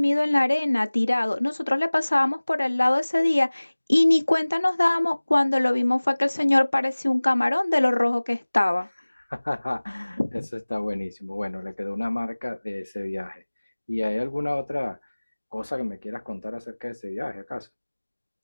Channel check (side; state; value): both; inverted; correlation -1.00